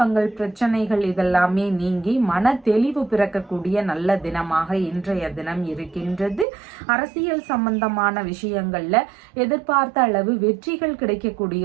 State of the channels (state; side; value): drops out; left; at 6.5 s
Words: பிரச்சனைகள் இதெல்லாம் நீங்கி மன தெளிவு பிறக்கக்கூடிய நல்ல தினமாக இன்றைய தினம் இருக்கின்றது. அரசியல் சம்பந்தமான விஷயங்கள்ல எதிர்பார்த்த அளவு வெற்றிகள்